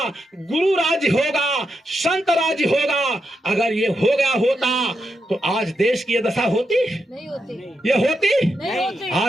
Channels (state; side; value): normal; both; correlation 0.85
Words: गुरु राज्य होगा, संत राज्य होगा। अगर ये हो गया होता तो आज देश की ये दशा होती? नहीं होती। ये होती? नहीं होती।